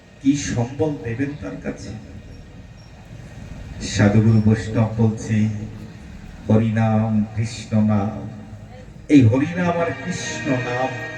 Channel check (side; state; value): both; identical; correlation 1.00